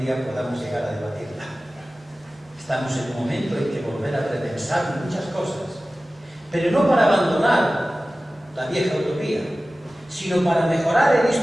podamos llegar a debatirla. Estamos en un momento en que volver a repensar muchas cosas, pero no para abandonar la vieja utopía, sino para mejorar el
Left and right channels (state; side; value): normal; both; correlation 0.96